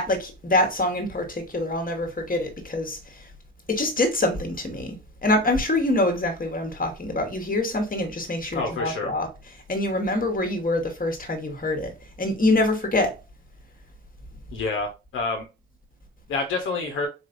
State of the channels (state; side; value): normal; both; correlation 0.31